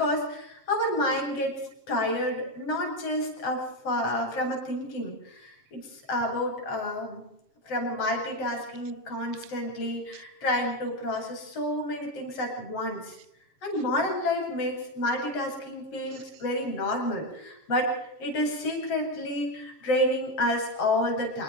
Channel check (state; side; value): late; right; 7.2 ms